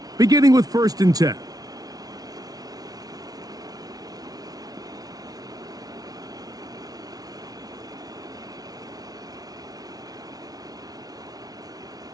beginning with 1st and 10.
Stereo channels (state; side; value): late; left; 0.18 ms